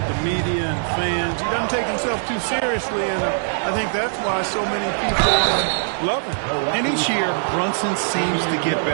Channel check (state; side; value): silent; left; 65 dB below the other